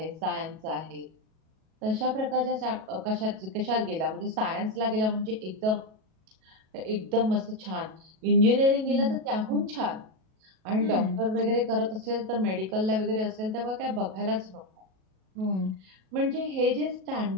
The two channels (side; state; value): left; late; 37 ms